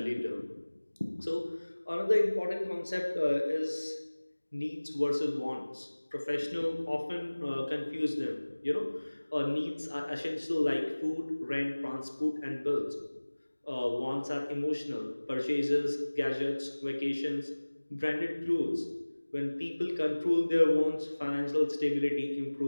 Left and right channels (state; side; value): inverted; both; correlation -1.00